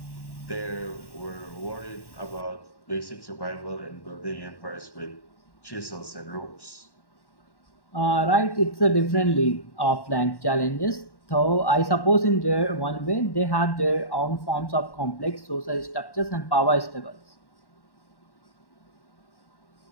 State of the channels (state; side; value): late; right; 1.1 ms